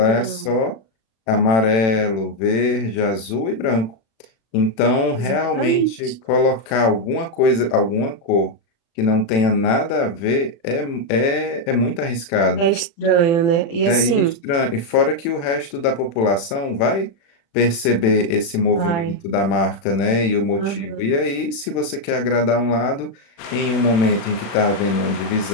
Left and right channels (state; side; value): late; right; 36 ms